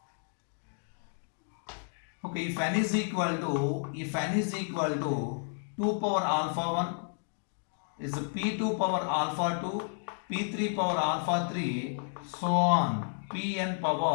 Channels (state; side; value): silent; right; 57 dB below the other